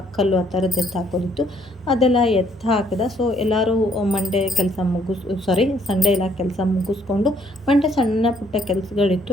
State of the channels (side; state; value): both; normal; correlation 0.66